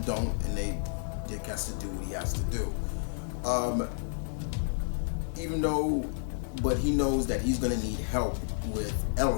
don't, and Dick has to do what he has to do. But he knows that he's gonna need help with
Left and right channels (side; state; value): right; silent; digital silence